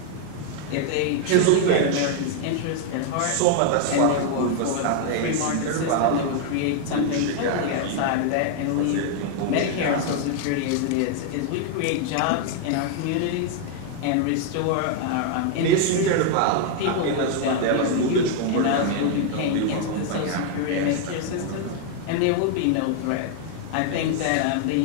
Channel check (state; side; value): different; both; correlation 0.00